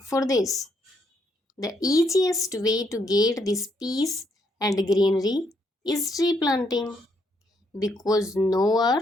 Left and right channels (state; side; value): normal; both; correlation 0.74